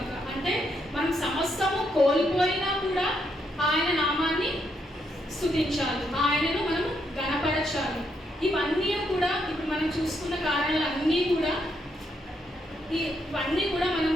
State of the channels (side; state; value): both; normal; correlation 0.77